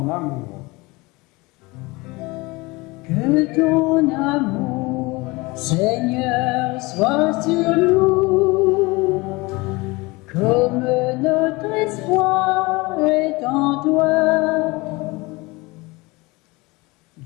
amour. Que ton amour, Seigneur, soit sur nous, comme notre espoir est en toi.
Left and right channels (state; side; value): quieter; right; 23.7 dB